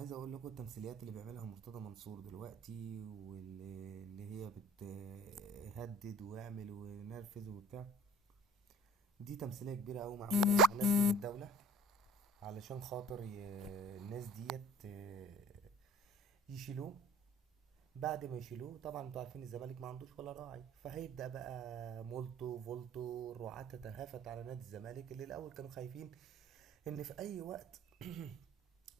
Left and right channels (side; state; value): both; normal; correlation 0.49